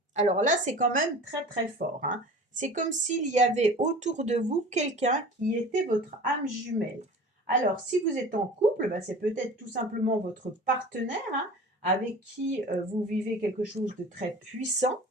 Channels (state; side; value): normal; both; correlation 0.40